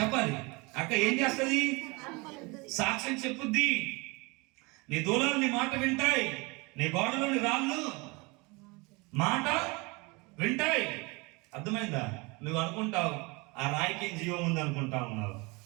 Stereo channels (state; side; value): quieter; left; 26.8 dB